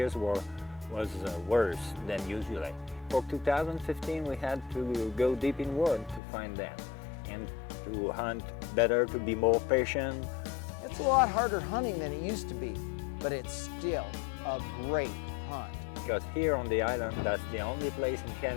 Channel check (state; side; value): drops out; right; at 6.2 s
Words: was worse than usually. For 2015, we had to go deep in wood to find them and to hunt better, to be more patient. It's a lot harder hunting than it used to be, but it's still a great hunt. Because here on the island, that's the only place in